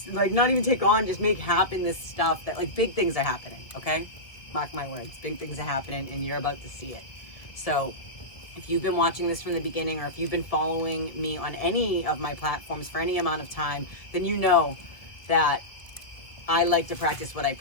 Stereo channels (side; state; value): right; late; 1.7 ms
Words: like not even take on, just make happen this stuff that like big things are happening, okay? Mark my words, big things are happening and you're about to see it. So if you've been watching this from the beginning, or if you've been following me on any of my platforms for any amount of time, then you know that I like to practice what I